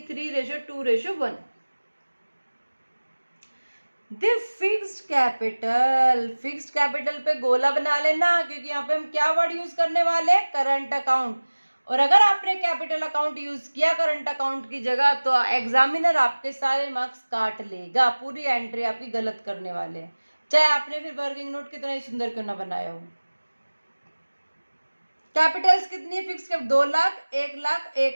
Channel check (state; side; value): inverted; both; correlation -1.00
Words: The fixed capital, fixed capital पे गोला बना लेना, क्योंकि यहाँ पे हम क्या वर्ड यूज करने वाले हैं? Current account. और अगर आपने कैपिटल अकाउंट यूज किया करंट अकाउंट की जगह तो एग्जामिनर आपके सारे मार्क्स काट लेगा, पूरी एंट्री आपकी गलत करने वाले हैं, चाहे आपने फिर वर्किंग नोट कितना ही सुंदर क्यों ना बनाया हो। कैपिटल्स कितनी fix? 2 lakh, 1 lakh,